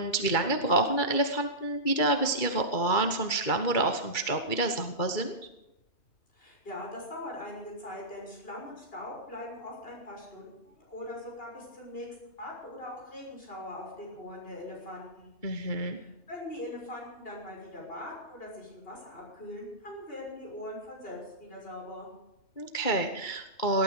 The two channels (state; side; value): late; right; 2.3 ms